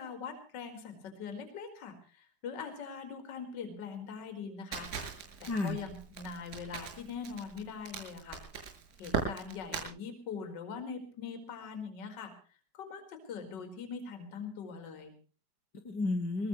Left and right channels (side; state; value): right; late; 4.6 ms